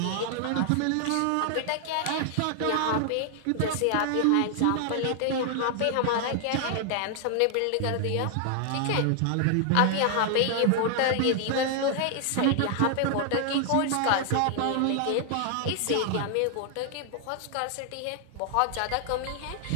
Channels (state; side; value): different; both; correlation 0.00